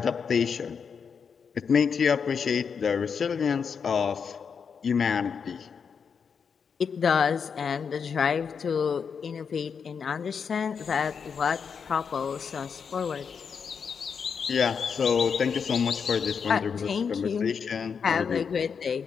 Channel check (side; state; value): right; quieter; 6.3 dB